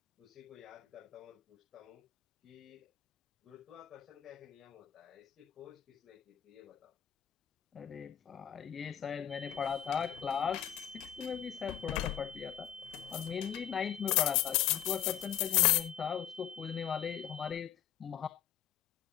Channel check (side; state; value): right; quieter; 10.5 dB